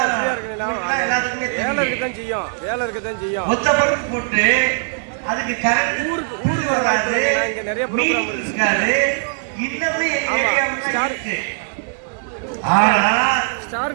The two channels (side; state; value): left; silent; digital silence